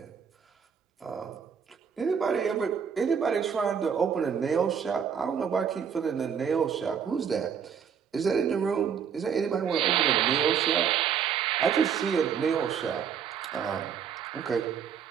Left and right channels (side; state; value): left; quieter; 7.4 dB